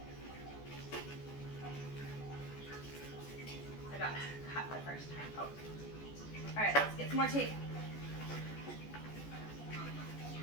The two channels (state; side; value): late; right; 14 ms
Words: go. I got cut the first time. Oh. All right, let's get some more tape.